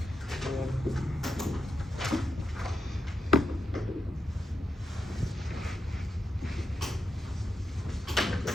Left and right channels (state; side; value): normal; both; correlation 0.86